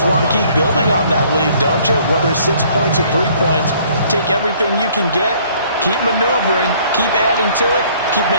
want to keep building on that lead, don't you? Whether it's 6 points or 3 points, take everything you can get, keep maneuvering, keep adding to it, keep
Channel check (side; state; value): both; inverted; correlation -0.59